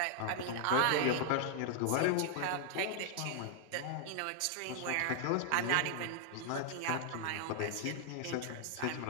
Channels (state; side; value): different; both; correlation 0.00